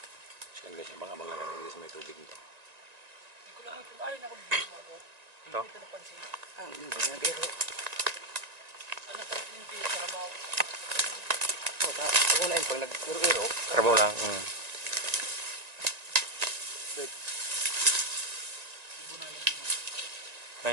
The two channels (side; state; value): left; late; 1.9 ms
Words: So ayun guys, abang-abang lang tayo dito sa may tubig nito. Hindi ko lang ito. Ay, nakabibig mo ako. Ito? Hindi ko napansin. Hindi ba nga biro? Ano pa yung hindi sa kabaw? Ako na yun pag nag-iro-iro. Karabaw lang.